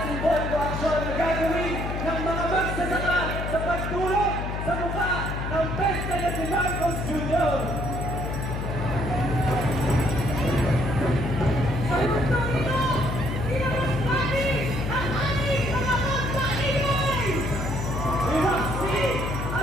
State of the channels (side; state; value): left; noise; hum, 4 dB below the sound